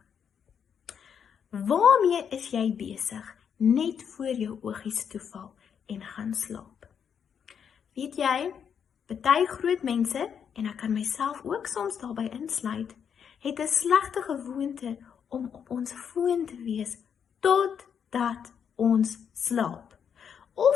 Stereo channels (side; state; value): right; quieter; 7.6 dB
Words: Waarmee is jy besig net voor jou oogies toeval en gaan slaap? Weet jy, party groot mense, en ek kan myself ook soms daarbey insluit, het 'n slegte gewoonte om op ons foon te wees totdat ons slaap.